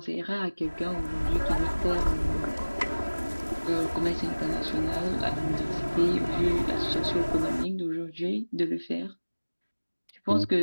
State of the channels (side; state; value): both; inverted; correlation -1.00